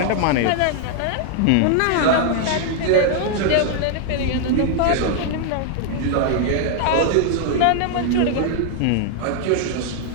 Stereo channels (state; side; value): different; both; correlation 0.00